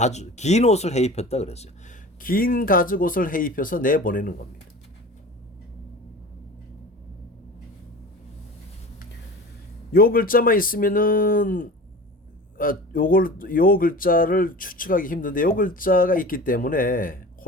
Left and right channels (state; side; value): normal; both; correlation 0.37